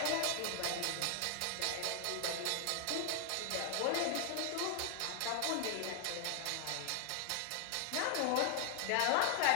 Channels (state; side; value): different; both; correlation 0.00